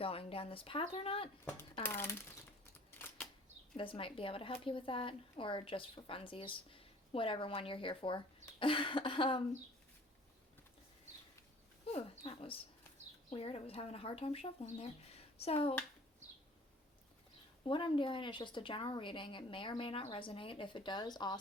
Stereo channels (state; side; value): normal; both; correlation 0.50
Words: down this path or not. This might be able to help you with that, or just for funsies, whatever one you're here for. That was weird. I was having a hard time shuffling there. So, what I'm doing is just a general reading. It may or may not resonate. If it does,